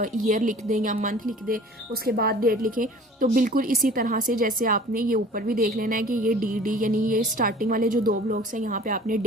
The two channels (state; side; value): normal; both; correlation 0.46